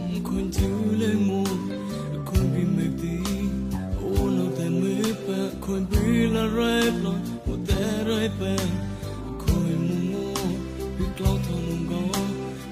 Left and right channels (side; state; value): both; identical; correlation 1.00